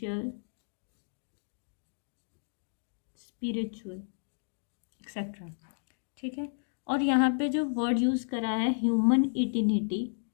spiritual etcetera. ठीक है। और यहाँ पे जो वर्ड यूज़ करा है ह्यूमन इटिनिटी,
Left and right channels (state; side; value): silent; right; digital silence